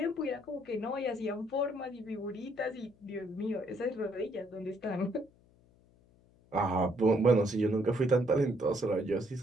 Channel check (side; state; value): left; noise; hum, 30 dB below the sound